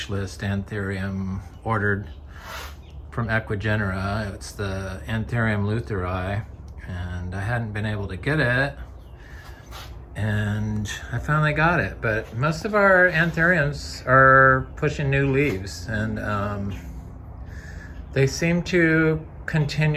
list Anthurium ordered from Equigenera. It's the Antherium lutheri, and I hadn't been able to get it, and I finally got it. But most of our Anthuriums are pushing new leaves, and they seem to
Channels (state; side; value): identical; both; correlation 1.00